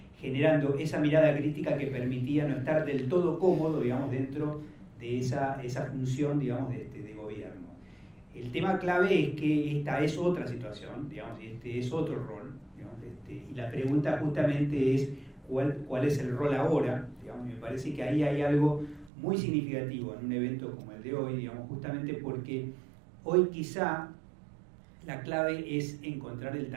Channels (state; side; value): drops out; left; at 19.1 s